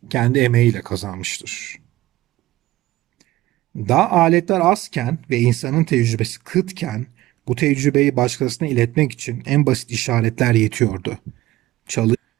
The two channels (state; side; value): quieter; left; 16.7 dB